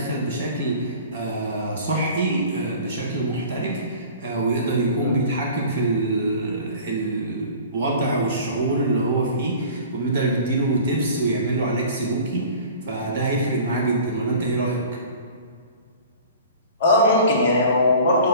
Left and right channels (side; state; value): both; inverted; correlation -0.44